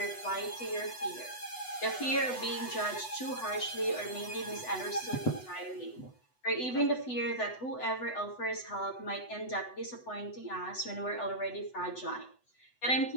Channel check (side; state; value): right; late; 8.0 ms